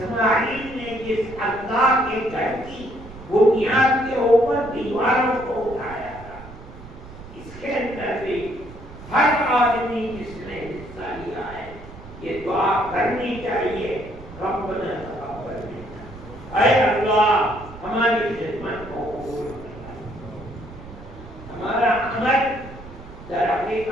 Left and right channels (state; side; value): noise; right; rumble, 16 dB below the sound